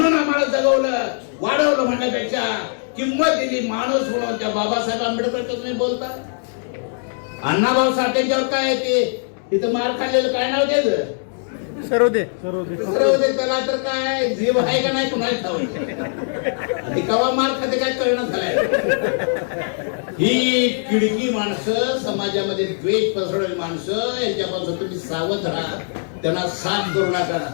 आम्हाला जगवलं, वाढवलं, म्हणण्यापेक्षा किंमत दिली माणूस म्हणून, त्या बाबासाहेब आंबेडकर तुम्ही बोलता. अण्णाभाऊ साठेंच्यावर काय ते तिथं मार खाल्लेलं काय नाव त्याचं? सर्वदे. त्याला तर काय जीव आहे का नाही कुणाला ठाऊक. कवा मार खाते काय कळणं झालंय. ही किडकी माणसं, समाजामध्ये द्वेष पसरवणारी माणसं, यांच्यापासून तुम्ही सावध राहा, त्यांना साथ करू नका.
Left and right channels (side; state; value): right; silent; digital silence